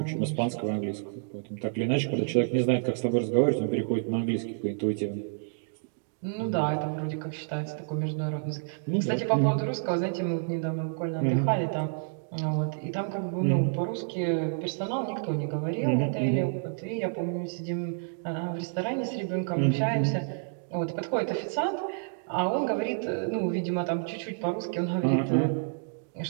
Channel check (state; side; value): silent; left; digital silence